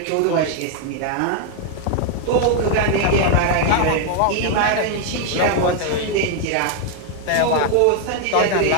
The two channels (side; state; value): both; different; correlation 0.00